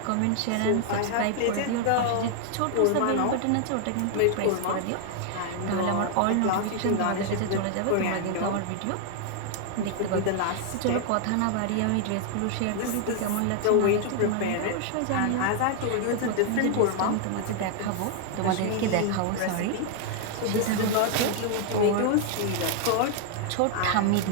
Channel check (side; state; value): both; different; correlation 0.00